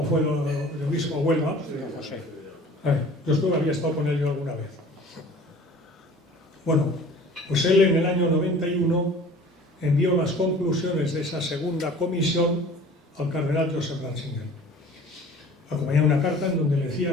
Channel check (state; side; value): normal; both; correlation 0.46